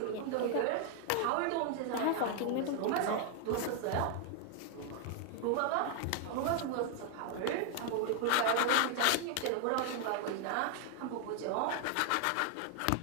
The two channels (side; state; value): both; different; correlation 0.00